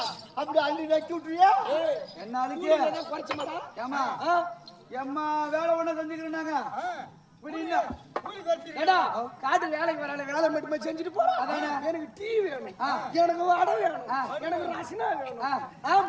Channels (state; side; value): identical; both; correlation 1.00